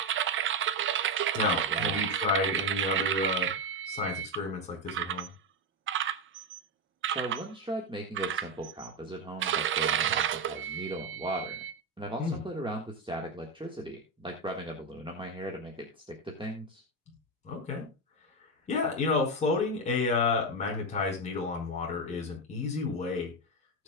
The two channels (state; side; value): normal; both; correlation 0.09